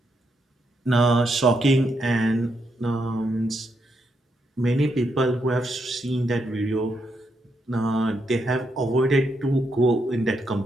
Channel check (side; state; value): both; normal; correlation 0.80